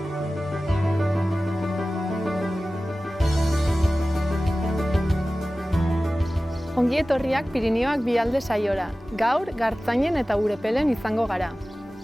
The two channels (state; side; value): normal; both; correlation 0.96